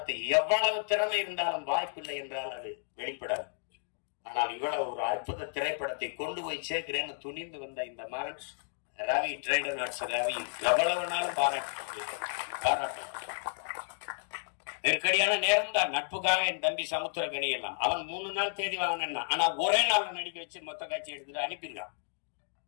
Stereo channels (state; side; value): silent; right; digital silence